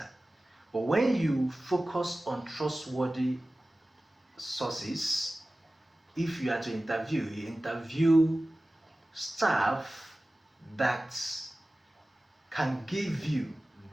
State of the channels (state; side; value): normal; both; correlation 0.96